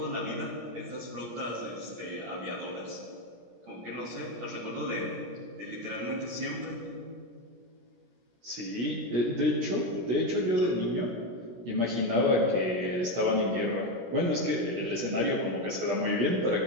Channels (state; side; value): late; left; 17 ms